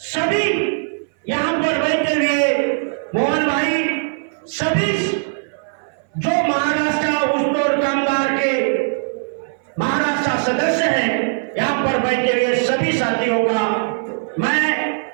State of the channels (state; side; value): silent; left; 61 dB below the other